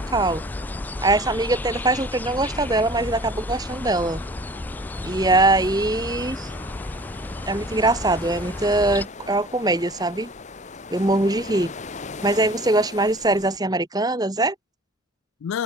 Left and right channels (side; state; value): both; normal; correlation 0.46